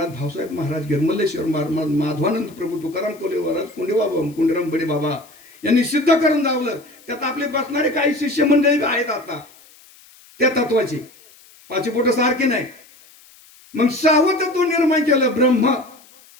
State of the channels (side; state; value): left; noise; hiss, 26 dB below the sound